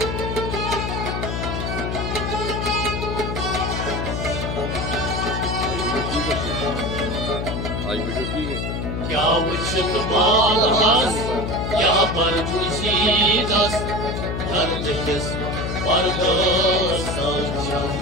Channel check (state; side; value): noise; left; hum, 3 dB below the sound